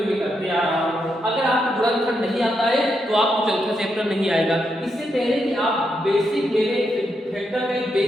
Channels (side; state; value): both; normal; correlation 0.82